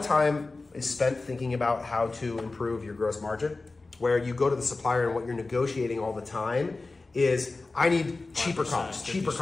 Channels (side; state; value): right; quieter; 3.5 dB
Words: time is spent thinking about how to improve your gross margin, where you go to the supplier and what you're negotiating all the time is, I need cheaper